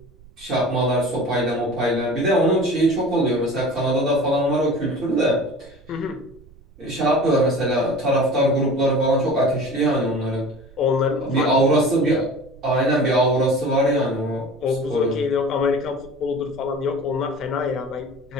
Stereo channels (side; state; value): right; noise; rumble, 25 dB below the sound